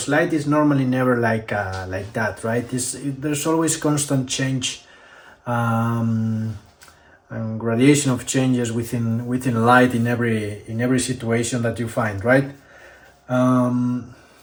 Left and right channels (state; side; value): identical; both; correlation 1.00